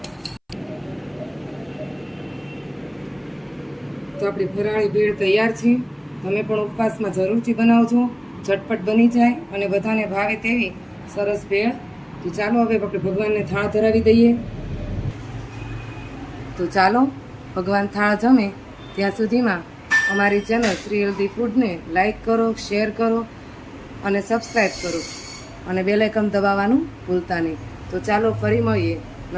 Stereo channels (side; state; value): both; identical; correlation 1.00